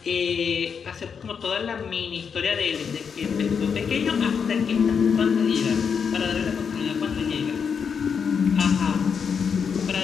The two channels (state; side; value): quieter; right; 6.5 dB